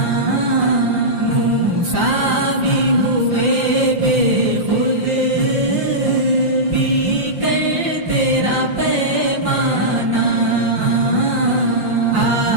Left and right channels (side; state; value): left; late; 5.7 ms